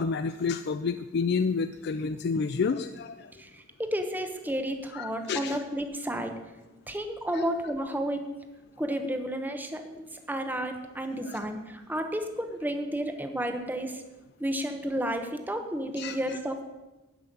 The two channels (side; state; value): both; normal; correlation 0.56